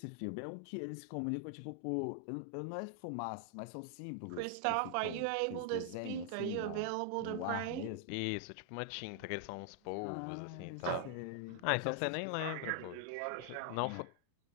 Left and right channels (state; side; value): different; both; correlation 0.00